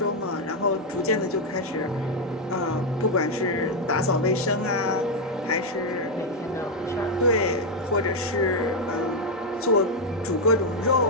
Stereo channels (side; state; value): both; normal; correlation 0.03